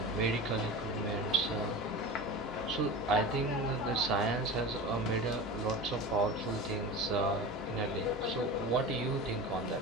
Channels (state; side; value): normal; both; correlation 0.30